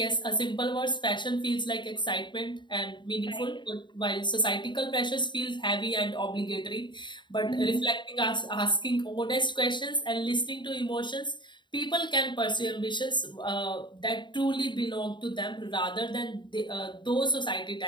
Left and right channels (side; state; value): right; late; 0.22 ms